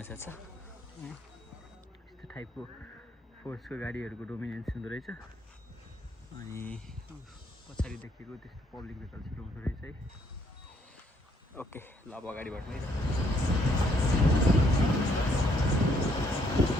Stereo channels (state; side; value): normal; both; correlation 0.69